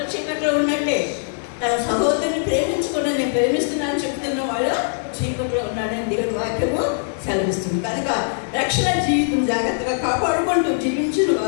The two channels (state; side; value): silent; right; 65 dB below the other